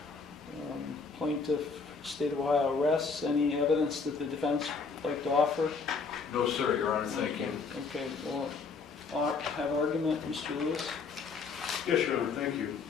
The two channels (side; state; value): right; quieter; 4.8 dB